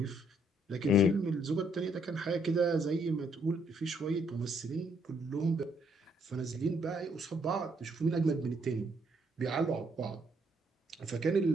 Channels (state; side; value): normal; both; correlation 0.70